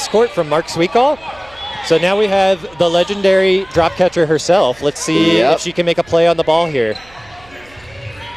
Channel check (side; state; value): right; noise; hum, 27 dB below the sound